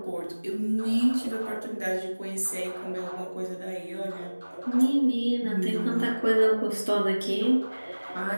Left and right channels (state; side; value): inverted; both; correlation -1.00